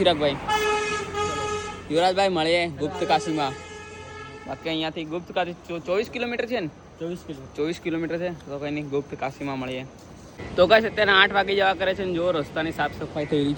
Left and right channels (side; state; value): both; identical; correlation 1.00